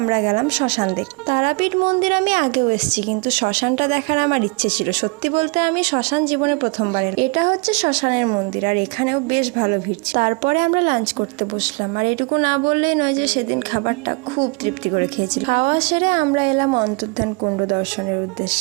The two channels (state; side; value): quieter; left; 30.1 dB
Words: গেলাম শ্মশান দেখতে। তারাপীঠ মন্দির আমি আগেও এসেছি, কিন্তু শ্মশানটা দেখার আমার ইচ্ছে ছিল। সত্যি বলতে আমি শ্মশান জীবনে প্রথমবার এলাম। এটা হচ্ছে শ্মশানের মন্দির, আর এখানেও বেশ ভালো ভিড় ছিল। তারপরে আমরা লাঞ্চ করতে বসলাম। আর এটুকু না বললেই নয় যে সেদিন খাবারটা খুব তৃপ্তি করে খেয়েছি। খাওয়া সেরে আমরা এলাম অন্তর্ধান কুণ্ড দর্শনের উদ্দেশ্যে।